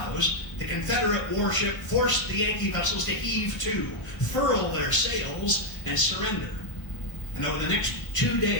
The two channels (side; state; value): right; late; 1.1 ms